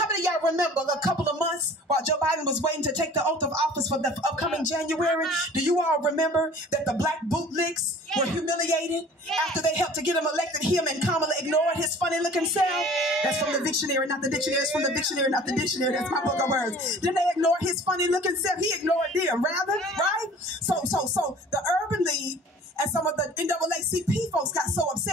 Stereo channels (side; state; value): both; normal; correlation 0.47